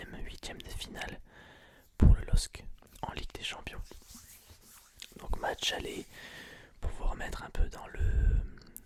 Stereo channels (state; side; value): identical; both; correlation 1.00